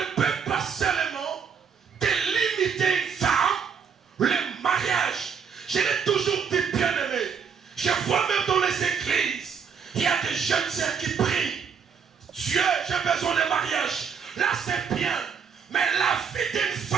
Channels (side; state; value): left; quieter; 6.7 dB